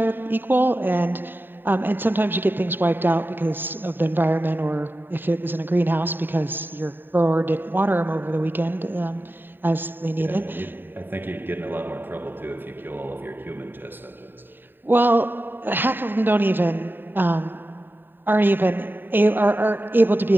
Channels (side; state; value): left; late; 0.094 ms